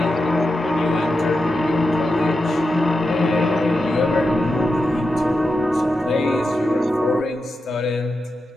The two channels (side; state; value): both; normal; correlation 0.89